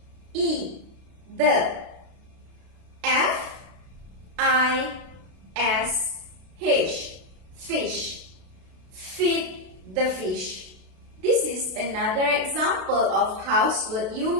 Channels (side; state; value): left; late; 32 ms